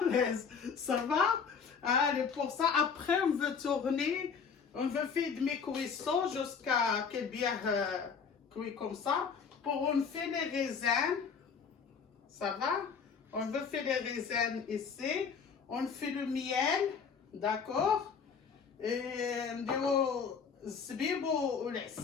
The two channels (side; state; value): right; quieter; 6.1 dB